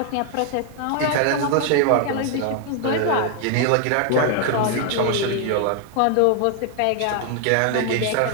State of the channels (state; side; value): different; both; correlation 0.00